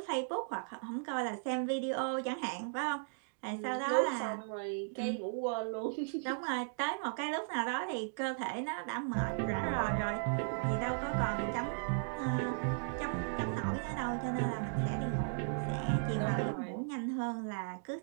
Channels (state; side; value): silent; left; digital silence